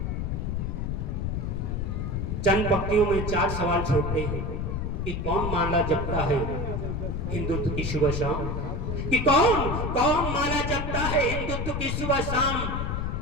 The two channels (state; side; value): noise; left; rumble, 1 dB below the sound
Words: चंद पंक्तियों में 4 सवाल छोड़ते हैं कि कौन माला जपता है हिंदुत्व की सुबह शाम, कि कौन माला जपता है हिंदुत्व की सुबह शाम।